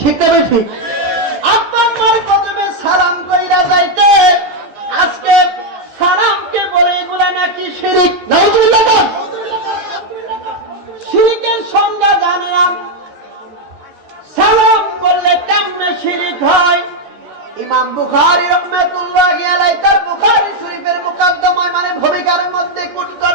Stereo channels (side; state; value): left; late; 14 ms